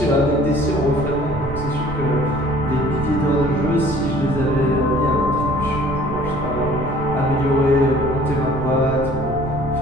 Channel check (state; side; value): noise; right; rumble, 11 dB below the sound